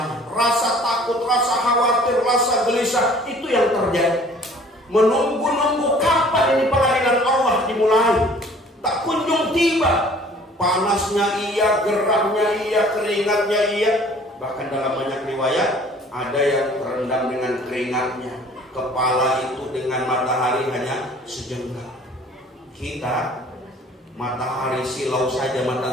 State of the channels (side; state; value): both; normal; correlation 0.52